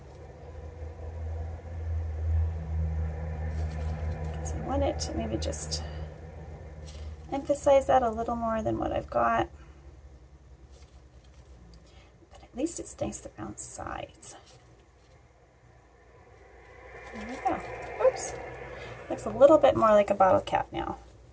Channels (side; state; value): both; identical; correlation 1.00